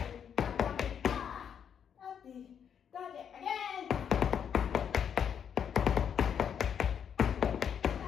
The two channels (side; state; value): right; quieter; 8.1 dB